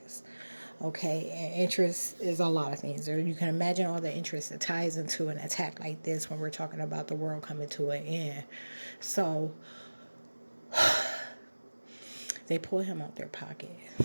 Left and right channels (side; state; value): both; inverted; correlation -1.00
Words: Okay, and interest is a lot of things. Or you can imagine all the interest that ties into an attack like this when we're talking about the world coming to an end. So they pull him out their pocket.